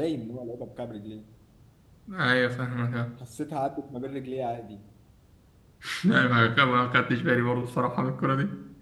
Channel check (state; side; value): identical; both; correlation 1.00